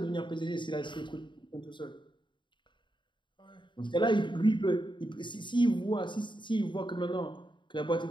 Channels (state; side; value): late; right; 0.23 ms